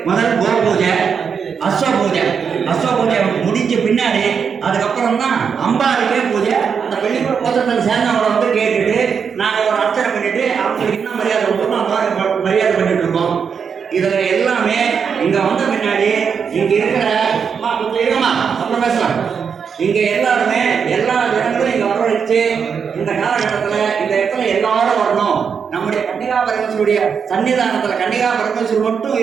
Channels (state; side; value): quieter; left; 6.4 dB